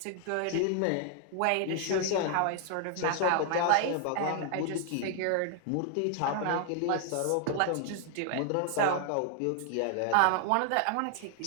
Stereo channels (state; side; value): different; both; correlation 0.00